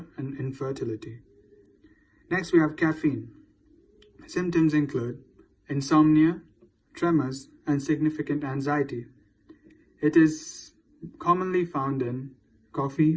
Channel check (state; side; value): identical; both; correlation 1.00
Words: and infertility. Next, we have caffeine. Symptoms include insomnia, tremors, and significant anxiety. It is commonly found in